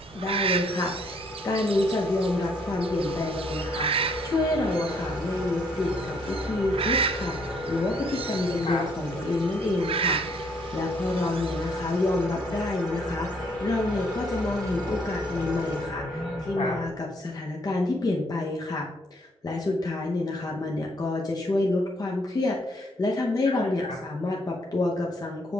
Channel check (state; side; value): normal; both; correlation 0.68